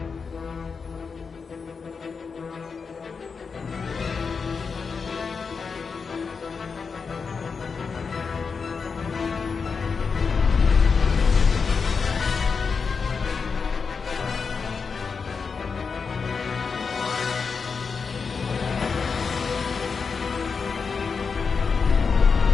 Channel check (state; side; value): quieter; right; 5.3 dB